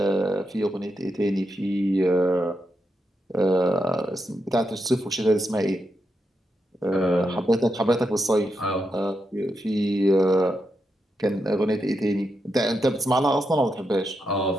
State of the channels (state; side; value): normal; both; correlation 0.85